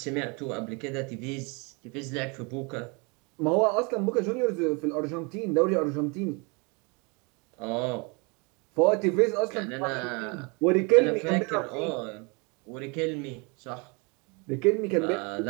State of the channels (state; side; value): quieter; left; 30.8 dB